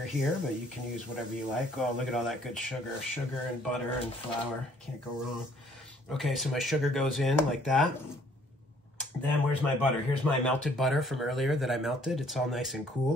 here, but you can use whatever you like. Oh, look at all that good sugar. Sugar and butter and flour. Can't go wrong. Okay, so my sugar goes in like that. Then where's my butter? Here's my melted butter from earlier that I melted. It's all nice and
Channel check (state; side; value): normal; both; correlation 0.61